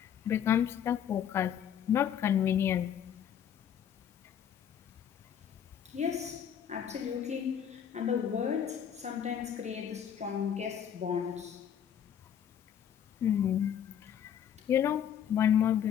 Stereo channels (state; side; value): quieter; right; 9.0 dB